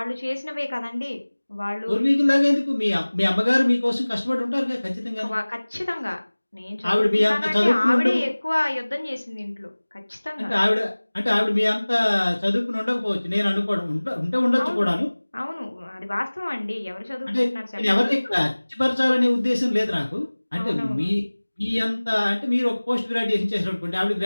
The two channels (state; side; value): inverted; both; correlation -1.00